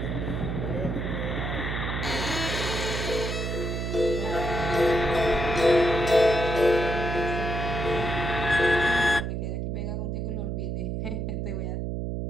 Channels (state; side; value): noise; right; hum, 2 dB below the sound